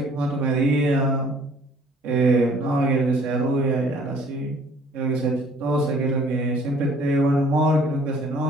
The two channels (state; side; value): normal; both; correlation 0.56